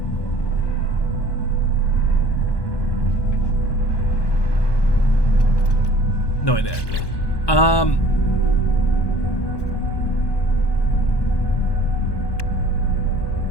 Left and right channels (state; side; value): late; right; 1.2 ms